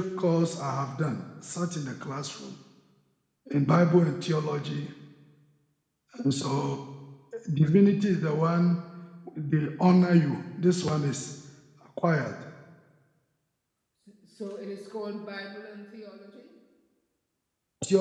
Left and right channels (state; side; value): identical; both; correlation 1.00